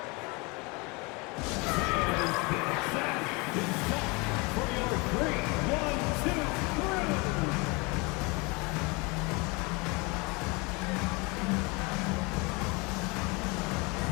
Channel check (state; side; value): quieter; right; 27.8 dB